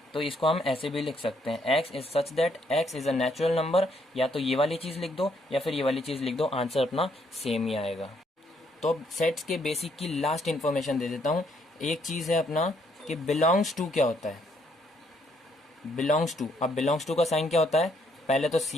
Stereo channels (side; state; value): both; normal; correlation 0.70